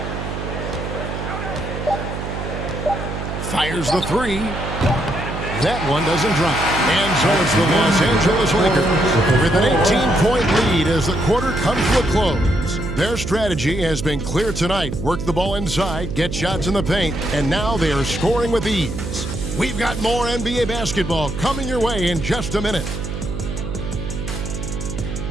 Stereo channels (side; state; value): right; noise; hum, 6 dB below the sound